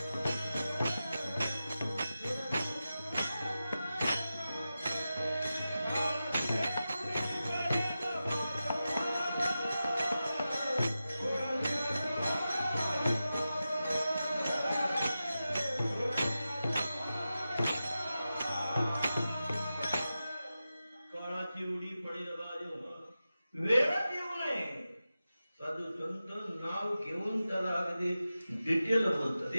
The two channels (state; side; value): inverted; both; correlation -0.92